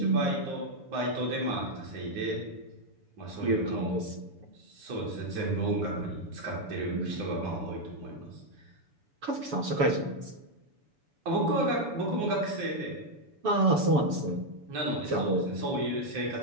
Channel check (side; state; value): left; late; 7.0 ms